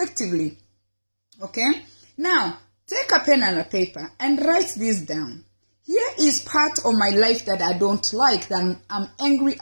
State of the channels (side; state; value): both; inverted; correlation -1.00